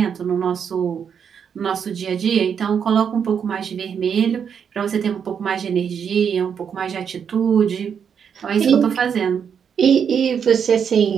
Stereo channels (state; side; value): quieter; left; 7.4 dB